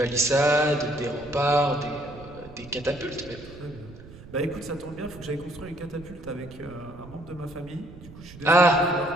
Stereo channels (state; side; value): noise; right; rumble, 18 dB below the sound